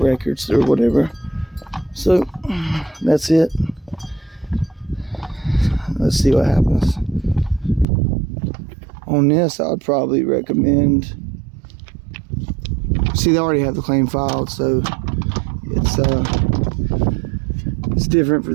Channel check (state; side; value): drops out; left; at 7.9 s